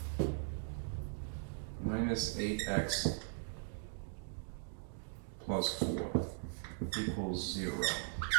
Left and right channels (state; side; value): silent; left; digital silence